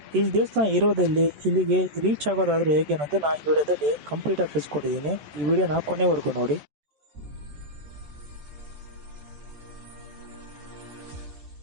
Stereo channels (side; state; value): left; late; 14 ms